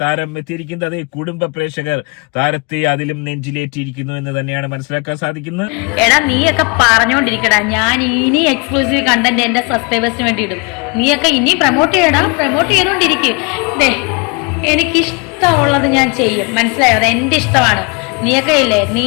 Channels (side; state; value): right; quieter; 31.3 dB